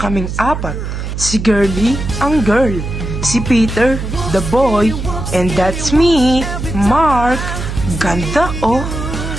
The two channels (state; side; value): noise; right; hum, 5 dB below the sound